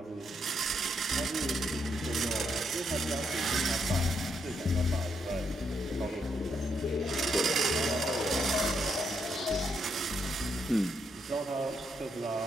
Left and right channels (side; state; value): both; normal; correlation 0.77